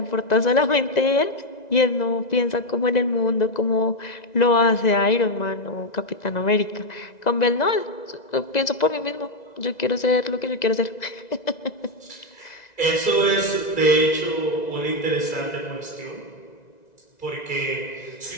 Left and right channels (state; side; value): late; right; 2.0 ms